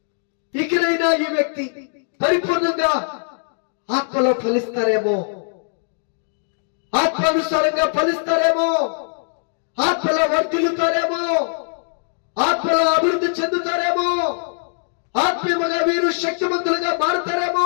ఇకనైనా ఈ వ్యక్తి పరిపూర్ణంగా ఆత్మలో ఫలిస్తారేమో, ఆత్మానుసారంగా ఫలిస్తారేమో, ఆత్మలో వర్ధిల్లుతారేమో, ఆత్మలో అభివృద్ధి చెందుతారేమో, ఆత్మీయంగా వీరు శక్తివంతులుగా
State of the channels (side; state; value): right; silent; digital silence